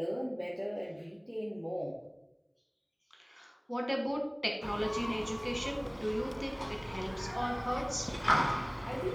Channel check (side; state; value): both; identical; correlation 1.00